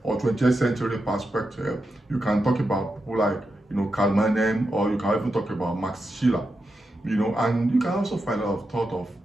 or 20th century perspective, you can talk about people like, Karl Marx, or you can even talk about Max Schiller, and you can also find a lot of thought of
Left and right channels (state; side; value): normal; both; correlation 0.87